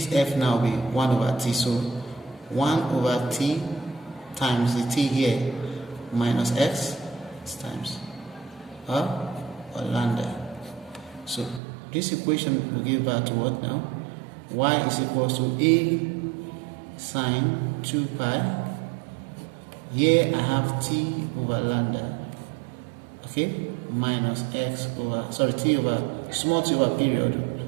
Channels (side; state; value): left; drops out; at 11.6 s